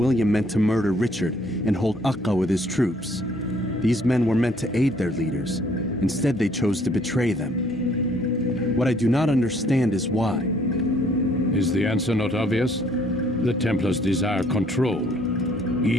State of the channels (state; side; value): normal; both; correlation 0.63